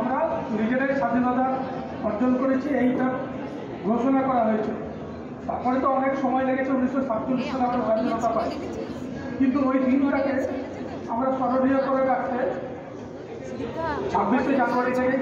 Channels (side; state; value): both; identical; correlation 1.00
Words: নিজেরাই স্বাধীনতা অর্জন করেছি, এইটা ঘোষণা করা হয়েছিল। তারপরে তো অনেক সময় লেগেছে, 1947 সালে আমরা স্বাধীনতা পাই। কিন্তু ওই দিনটাকে আমরা স্মরণীয় করে রাখতে 26শে জানুয়ারি থেকে